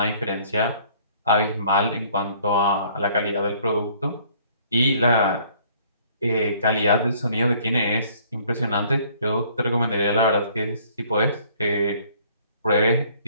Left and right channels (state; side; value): inverted; both; correlation -0.58